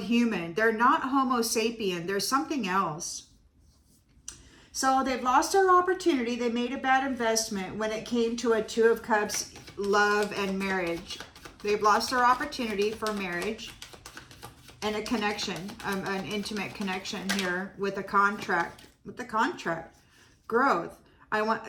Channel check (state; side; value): identical; both; correlation 1.00